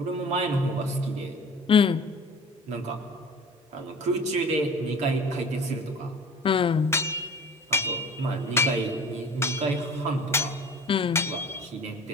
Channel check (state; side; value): normal; both; correlation 0.43